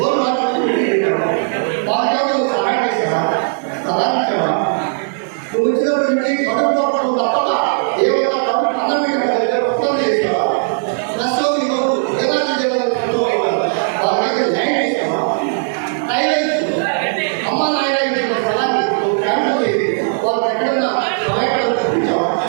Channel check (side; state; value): left; silent; digital silence